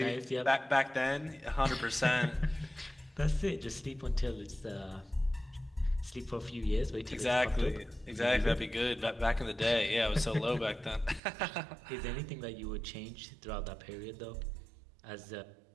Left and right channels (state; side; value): drops out; left; at 11.2 s